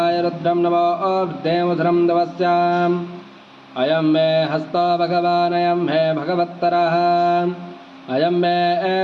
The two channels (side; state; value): both; identical; correlation 1.00